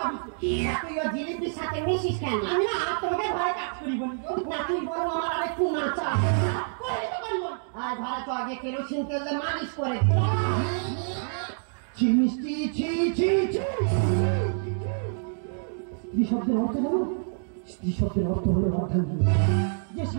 তুই ও জিলিপির সাথে মিশিস কেন? আমি না তোমাকে ঘরে কাজ করি বলি না, তুই বলো আমার আরেকটু নাচা করে তো করিব। আর ঘরে তো আগে কেরোসিন তেল দিয়ে মালিশ করে ছি মিষ্টি, ছি ছি ছি। স্ত্রী শব্দের অর্থ জানো? স্ত্রী শব্দের অর্থ হলো অর্ধাঙ্গিনী, যে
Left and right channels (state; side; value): silent; left; digital silence